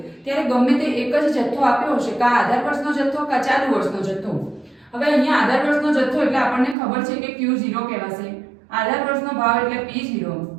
ત્યારે ગમે તે એક જ જથ્થો આપ્યો હશે, કા આધાર વર્ષનો જથ્થો કા ચાલુ વર્ષનો જથ્થો. હવે અહીંયા આધાર વર્ષનો જથ્થો એટલે આપણને ખબર છે કે Q0 કહેવાશે, આધાર વર્ષનો ભાવ એટલે P0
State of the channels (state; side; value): drops out; left; at 6.8 s